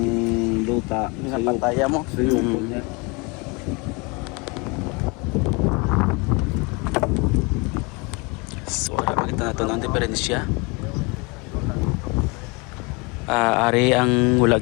luta. Pinapataya mo. Suyuko niya. So, makita natin ang diferensya. Ari ang wala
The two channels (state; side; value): quieter; right; 29.0 dB